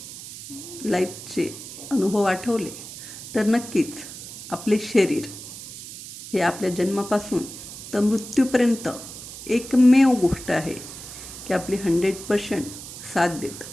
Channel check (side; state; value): right; noise; hiss, 12 dB below the sound